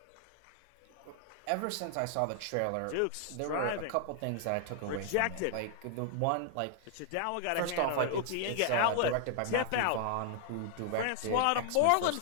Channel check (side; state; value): both; different; correlation 0.00